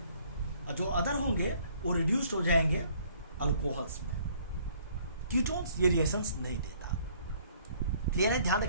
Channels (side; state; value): both; inverted; correlation -0.60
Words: और जो अदर होंगे वो रिड्यूस्ड हो जाएंगे अल्कोहल्स में। कीटोन्स ये रिएक्शंस नहीं देता। क्लियर है? ध्यान